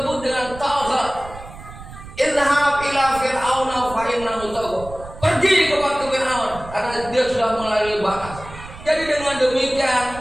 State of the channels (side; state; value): right; noise; rumble, 15 dB below the sound